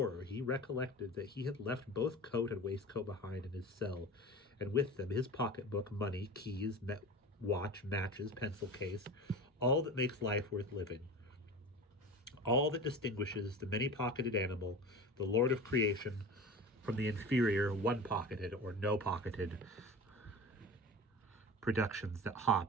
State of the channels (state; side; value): normal; both; correlation 0.33